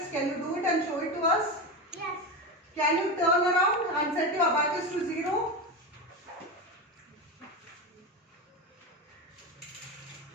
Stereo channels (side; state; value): both; normal; correlation 0.19